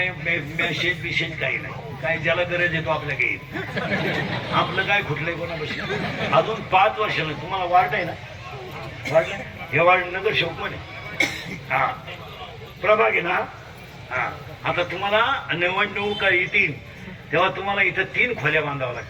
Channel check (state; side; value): identical; both; correlation 1.00